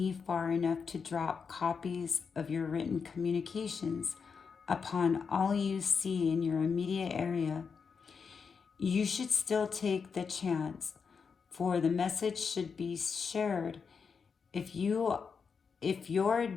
far enough to drop copies of your written communications upon all you see in your immediate area, you should still take the chance, for the message should be shared. If your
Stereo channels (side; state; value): right; quieter; 5.8 dB